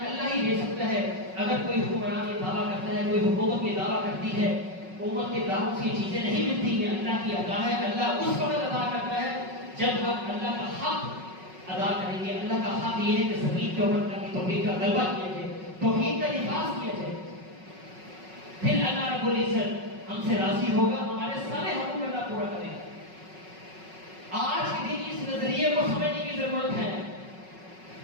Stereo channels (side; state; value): left; late; 5.4 ms